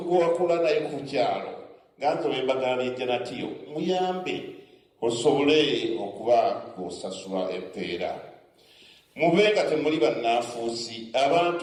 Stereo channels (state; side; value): identical; both; correlation 1.00